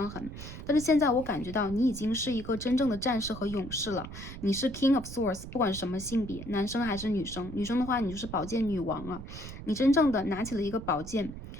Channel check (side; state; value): right; noise; rumble, 11 dB below the sound